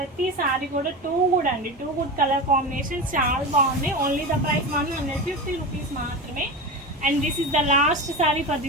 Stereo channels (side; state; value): both; normal; correlation 0.24